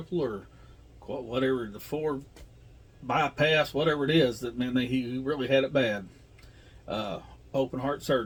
or whatever, the 4 bypass, whatever it is. That meant he really had it bad. Open heart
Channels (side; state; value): both; identical; correlation 1.00